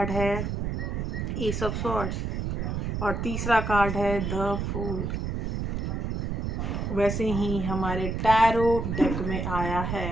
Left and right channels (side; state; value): right; noise; rumble, 2 dB below the sound